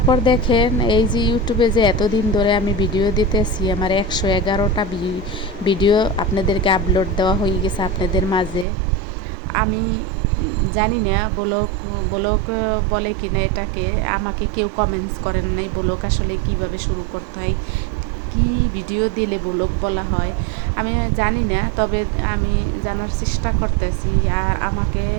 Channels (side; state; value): left; drops out; at 8.7 s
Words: দেখেন, এই যে ইউটিউবে যে এতদিন ধরে আমি ভিডিও দিতেছি, আমার 111টা ভিডিও আপনাদেরকে আপলোড দেওয়া হয়ে গেছে আপনাদের মাঝে। আমি জানি না ব্লগ ব্লগ বলে কিনা এটাকে, আমাকে কেউ কমেন্টস করেন নাই ব্লগ আসলে কিভাবে শুরু করতে হয়, কি ভিডিও দিলে ব্লগ বলা হয় আমি জানি না, তবে আমি জানার চেষ্টা করতেছি। আর আমাকে